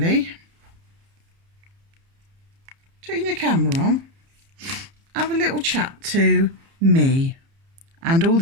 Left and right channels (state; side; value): late; left; 30 ms